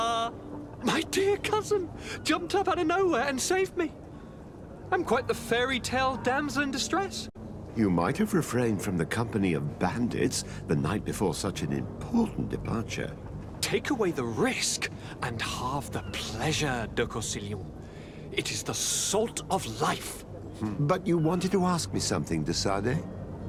My dear cousin jumped up out of nowhere and saved me. I'm quite the fairy tale damsel in distress. You might have refrained from the company of bandits the night before such an important departure. Take away the risk and halve the pleasure, de Corsilion. It is the salt of life. But you wanted to ask me something, de Sardet?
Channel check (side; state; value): both; identical; correlation 1.00